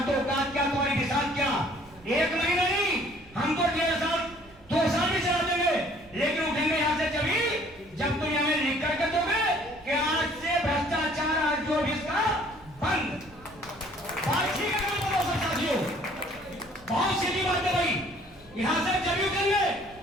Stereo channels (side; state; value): right; noise; rumble, 24 dB below the sound